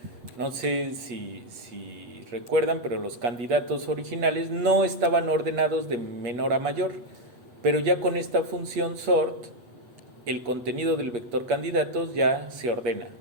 No sé si recuerdan, pero los candidatos originales no estaban ordenados de menor a mayor, pero ya con esta función sort, el contenido del vector candidatos ya se ordena,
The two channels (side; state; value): left; late; 8.5 ms